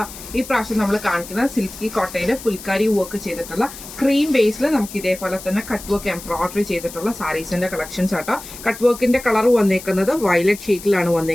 ഈ പ്രാവശ്യം നമ്മൾ കാണിക്കുന്ന സിൽക്കി കോട്ടയിൽ ഫുൽക്കാരി വർക്ക് ചെയ്തിട്ടുള്ള ക്രീം ബേസിൽ നമുക്ക് ഇതേപോലെ തന്നെ കട്ട് വർക്ക് എംബ്രോയിഡറി ചെയ്തിട്ടുള്ള സാരീസിന്റെ കളക്ഷൻസ് ആട്ടോ. കട്ട് വർക്കിന്റെ കളർ വന്നേക്കുന്നത് വയലറ്റ് ഷീറ്റിലാണ്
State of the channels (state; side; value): noise; left; hiss, 14 dB below the sound